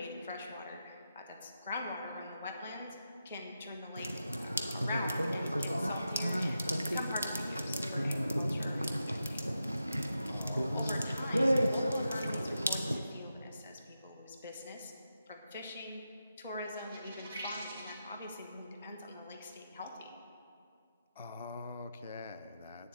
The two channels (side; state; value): both; inverted; correlation -0.88